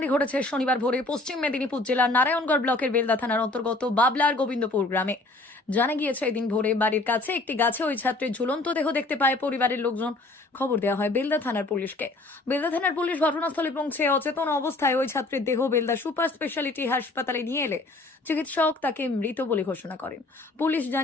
ঘটেছে শনিবার ভোরে পশ্চিম মেদিনীপুর জেলার নারায়ণগড় ব্লকের বেলদা থানার অন্তর্গত বাবলার গোবিন্দপুর গ্রামে। জানা গিয়েছে এদিন ভোরে বাড়ির কাছে একটি গাছে ওই ছাত্রের ঝুলন্ত দেহ দেখতে পায় পরিবারের লোকজন। খবর দেওয়া হয় বেলদা থানার পুলিশকে। বেলদা থানার পুলিশ ঘটনাস্থলে পৌঁছে অচেতন অবস্থায় ওই ছাত্রের দেহ বেলদা সুপার স্পেশালিটি হাসপাতালে নিয়ে এলে চিকিৎসক তাকে মৃত বলে ঘোষণা করেন। পুলিশ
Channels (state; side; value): quieter; right; 3.0 dB